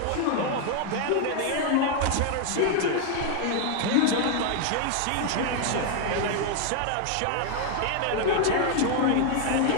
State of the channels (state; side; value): different; both; correlation 0.00